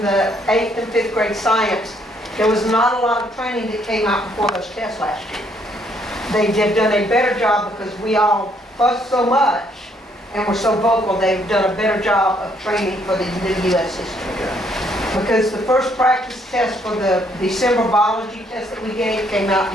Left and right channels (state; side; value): normal; both; correlation 0.68